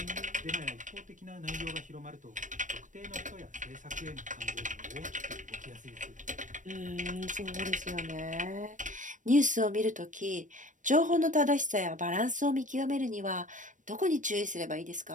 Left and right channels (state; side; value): late; left; 0.37 ms